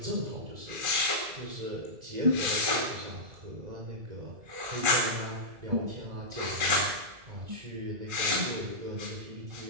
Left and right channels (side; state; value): left; late; 1.4 ms